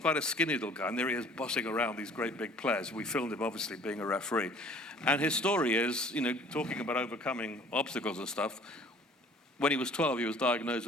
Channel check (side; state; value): both; normal; correlation 0.53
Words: quite a skinny little guy, and there he is bossing around these great big players. We filmed him, obviously, being a referee. And his story is, talking about overcoming obstacles and stuff. When he was 12, he was diagnosed